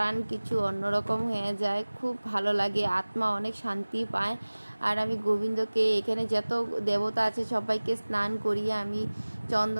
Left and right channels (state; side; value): inverted; both; correlation -1.00